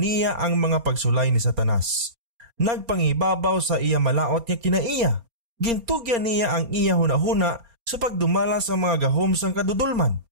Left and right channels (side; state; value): left; late; 4.3 ms